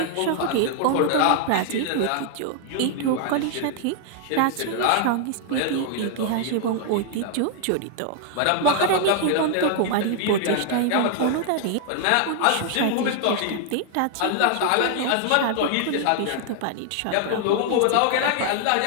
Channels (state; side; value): different; both; correlation 0.00